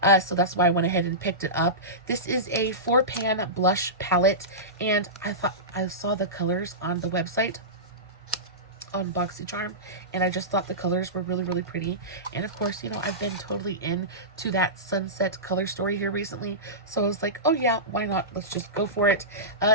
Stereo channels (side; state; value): both; normal; correlation -0.18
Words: So that's why I went ahead and picked it up. This is a 4-pan blush palette, and I saw the colors on the website on BoxyCharm, and I just thought the colors were really, really pretty. And of course, you know, I've been totally into that sunset color story here recently, so I was like, oh yeah, why not? Let's just go for it.